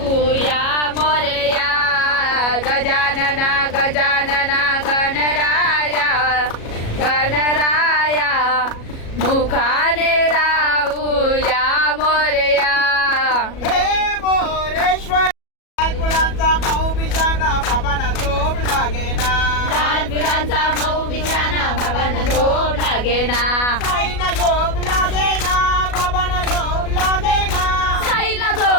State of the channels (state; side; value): late; right; 37 ms